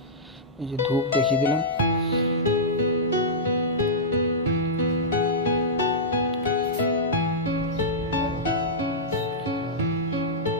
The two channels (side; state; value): both; normal; correlation -0.13